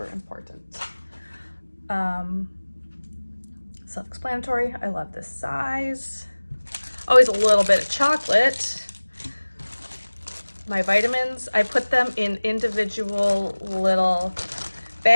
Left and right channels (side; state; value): both; inverted; correlation -1.00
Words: important. Self-explanatory. I love this size. Always a little bit of chocolate. My vitamins, I put them in individual little